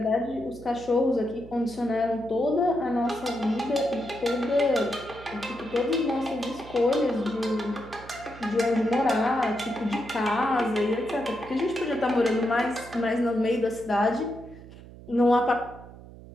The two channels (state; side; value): noise; right; hum, 18 dB below the sound